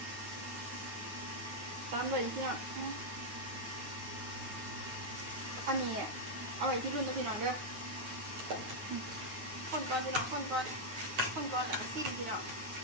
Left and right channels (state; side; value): late; left; 9.6 ms